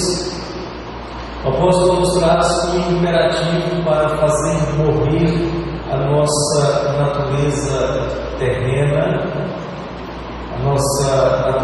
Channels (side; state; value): both; identical; correlation 1.00